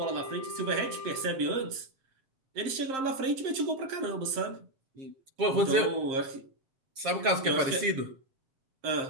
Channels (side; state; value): left; late; 7.3 ms